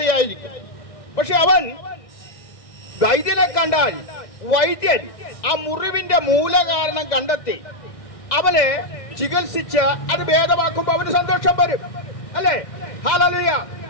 പക്ഷെ അവൻ വൈദ്യനെ കണ്ടാൽ വൈദ്യൻ ആ മുറിവിന്റെ മൂലകാരണം കണ്ടെത്തി അവനെ ചികിത്സിച്ച് അത് ഭേദമാക്കുമ്പോൾ അവന് സന്തോഷം വരും, അല്ലേ? ഹല്ലേലൂയ.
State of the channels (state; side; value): late; right; 2.0 ms